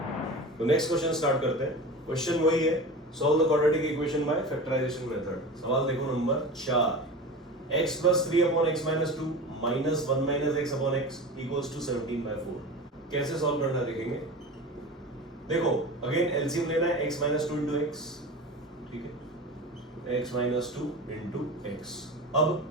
तो नेक्स्ट क्वेश्चन स्टार्ट करते हैं. क्वेश्चन वही है, solve the quadratic equation by factorisation method. सवाल देखो नंबर 4. x plus 3 upon x minus 2 minus 1 minus x upon x equals to 17 by 4. कैसे सॉल्व करना देखेंगे. देखो अगेन एलसीएम लेना है x minus 2 into x. ठीक है, x minus 2 into x. अब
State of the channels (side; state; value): both; normal; correlation 0.31